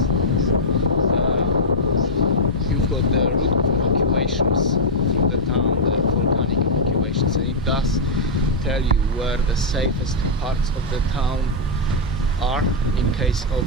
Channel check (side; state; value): both; normal; correlation -0.07